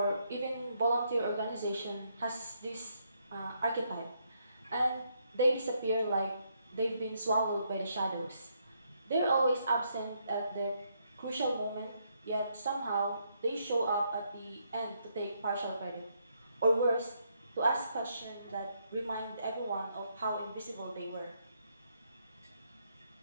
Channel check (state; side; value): inverted; both; correlation -0.74